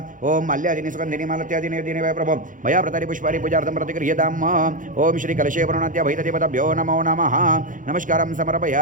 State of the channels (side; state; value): left; late; 0.38 ms